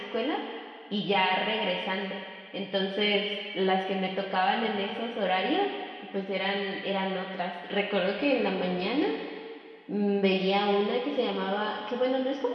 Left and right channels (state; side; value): identical; both; correlation 1.00